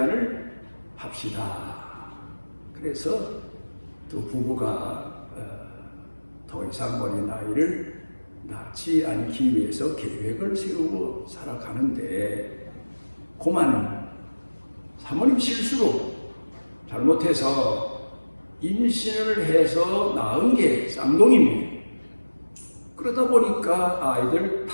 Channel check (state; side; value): inverted; both; correlation -1.00